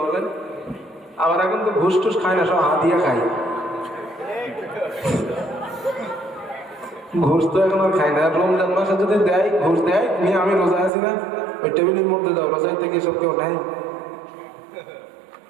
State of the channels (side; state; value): left; drops out; at 10.9 s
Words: বলেন? আবার এখন তো ঘুষ টুস খায় না, সব হাতিয়া খায়, ঘুষ তো এখন আর খায় না। রমজান মাসে যদি দেয় ঘুষ দেয়, নিয়ে আমি রোজা আছি না, ওই টেবিলের মধ্যে দাও, রোজাই থেকে সব কেউ নেয়,